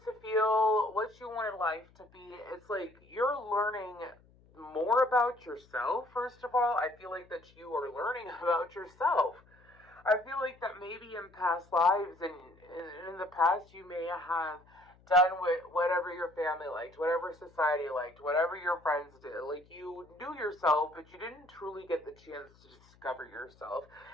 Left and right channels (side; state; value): left; noise; hum, 28 dB below the sound